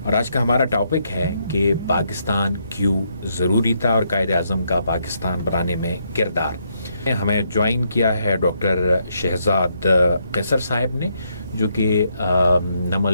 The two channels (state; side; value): inverted; both; correlation -0.76